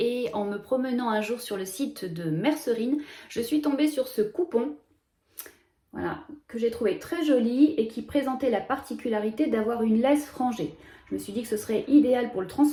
en me promenant un jour sur le site de Mercerine, je suis tombée sur ce coupon. Voilà, que j'ai trouvé très joli et qui présentait la particularité d'avoir une laisse frangée. Je me suis dit que ce serait idéal pour le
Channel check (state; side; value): identical; both; correlation 1.00